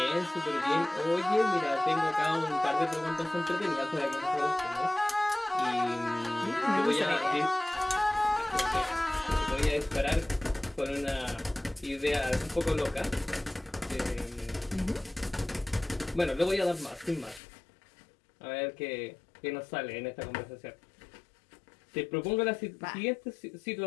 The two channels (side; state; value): right; drops out; at 17.4 s